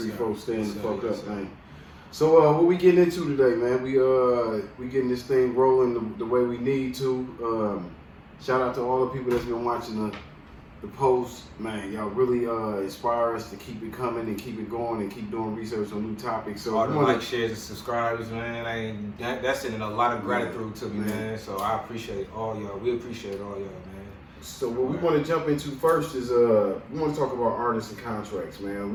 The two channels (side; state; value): both; identical; correlation 1.00